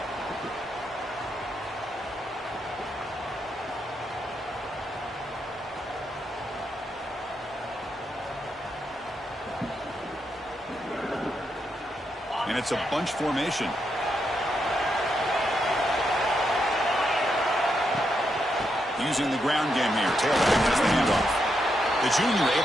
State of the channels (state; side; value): normal; both; correlation 0.81